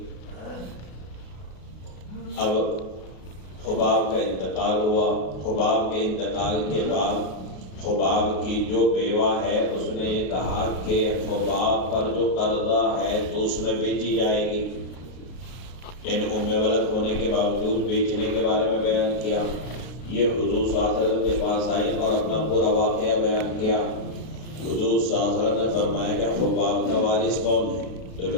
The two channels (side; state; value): right; late; 33 ms